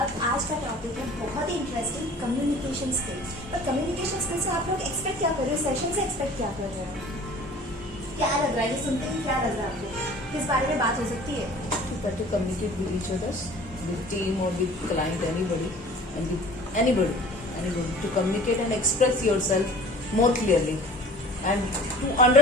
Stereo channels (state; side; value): normal; both; correlation 0.46